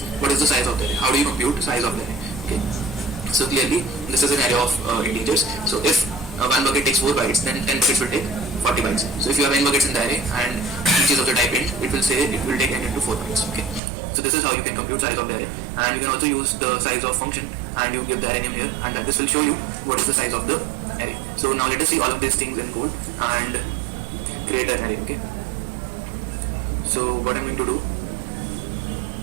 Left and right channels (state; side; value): drops out; left; at 13.8 s